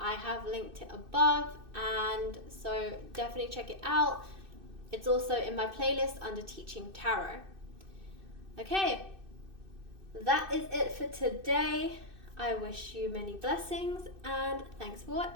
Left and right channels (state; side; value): late; left; 2.6 ms